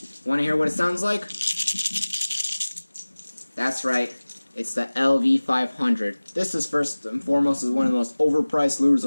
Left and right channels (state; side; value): inverted; both; correlation -1.00